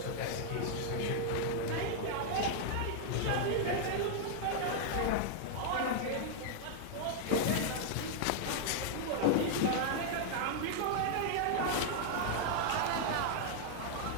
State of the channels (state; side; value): different; both; correlation -0.01